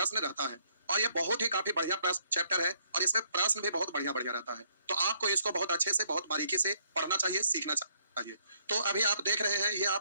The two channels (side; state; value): both; inverted; correlation -0.67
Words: रहता है। और ये बहुत ही काफी बढ़िया प्रश्न चैप्टर है और इसमें प्रश्न भी बहुत बढ़िया बढ़िया रहता है। तो आपको इसको बहुत अच्छे से बहुत बारीकी से पढ़ना चाहिए, सीखना चाहिए। तो अभी आप देख रहे हैं ये